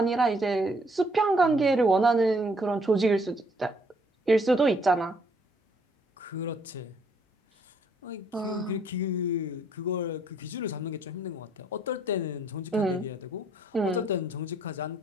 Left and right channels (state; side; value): normal; both; correlation 0.66